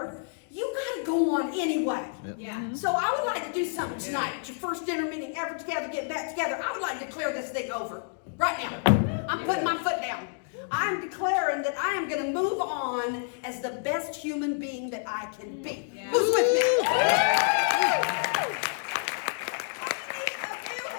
You got to go on anyway. Yep. Yeah. So I would like to do something tonight. It's your first dinner meeting ever together, get back together. I would like to declare this thing over right now. I'm putting my foot down. I'm declaring that I am going to move on as the best human being that I can be. Yeah. Who's with me?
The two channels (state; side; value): silent; right; digital silence